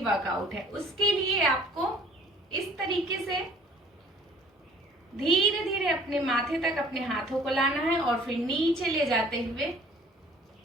वर्कआउट है उसके लिए आपको इस तरीके से धीरे धीरे अपने माथे तक अपने हाथों को लाना है और फिर नीचे ले जाते हुए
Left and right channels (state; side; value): normal; both; correlation 0.53